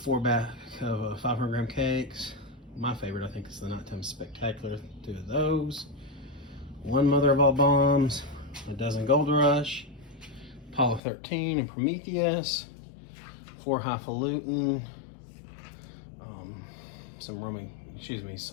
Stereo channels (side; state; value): right; drops out; at 11.0 s